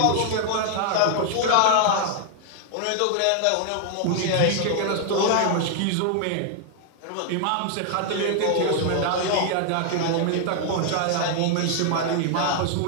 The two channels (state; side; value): different; both; correlation 0.00